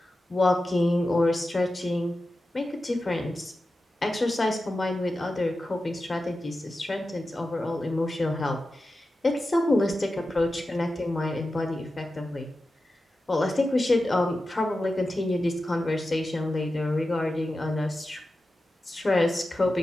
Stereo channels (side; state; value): both; normal; correlation 0.92